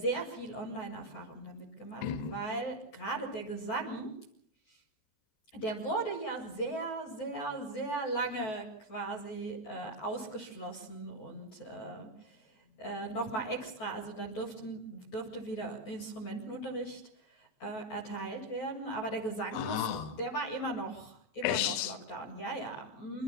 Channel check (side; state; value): right; late; 14 ms